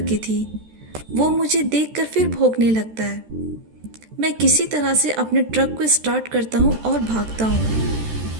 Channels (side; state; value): left; late; 13 ms